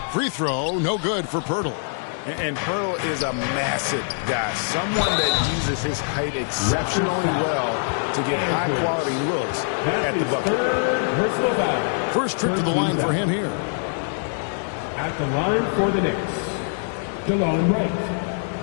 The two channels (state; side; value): silent; right; digital silence